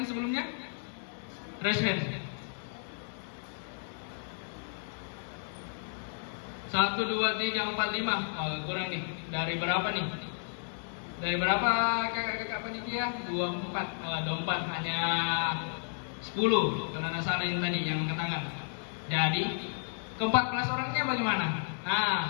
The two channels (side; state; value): right; silent; digital silence